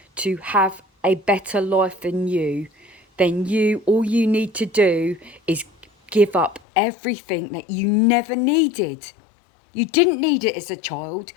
to have a better life than you, then all you need to do is give up everything that you never needed. You didn't need it as a child.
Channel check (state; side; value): drops out; right; at 6.6 s